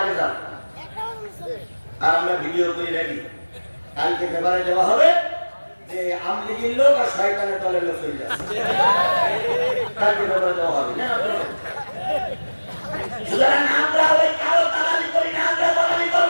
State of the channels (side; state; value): both; inverted; correlation -1.00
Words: আগে যান। আর আমরা ভিডিও করে রাখি, কালকে পেপারে দেওয়া হবে যে আমলিগির লোক আর শয়তানের দলের লোক চলে যাচ্ছে, কালকে পেপারে দেওয়া হবে না। সুতরাং আমরা ওই কালো দালালি করি না, আমরা দালালি